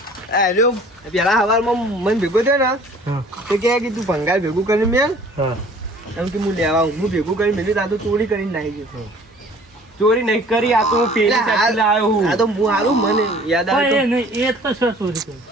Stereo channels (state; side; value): normal; both; correlation 0.51